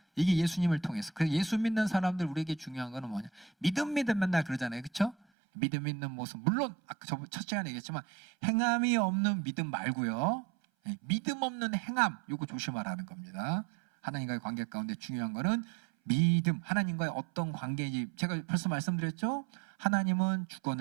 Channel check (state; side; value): drops out; left; at 5.2 s